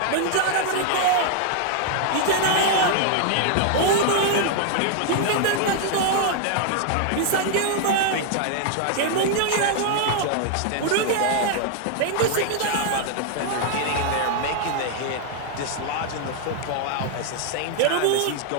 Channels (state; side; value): different; both; correlation 0.00